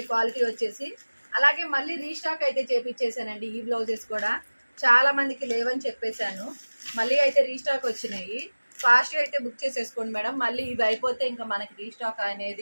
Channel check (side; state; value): both; inverted; correlation -1.00